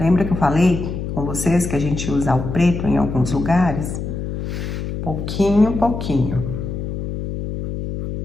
que eu falei com vocês que a gente usa o preto em alguns lugares? Pouquinho, pouquinho.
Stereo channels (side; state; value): left; noise; hum, 5 dB below the sound